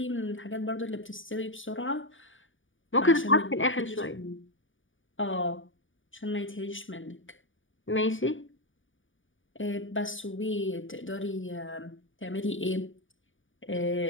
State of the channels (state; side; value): late; right; 0.57 ms